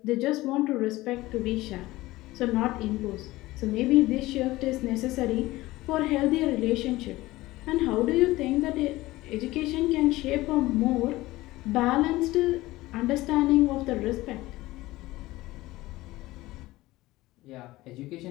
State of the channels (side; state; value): right; quieter; 18.4 dB